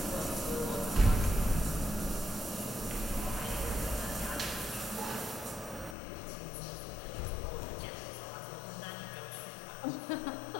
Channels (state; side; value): drops out; right; at 6.0 s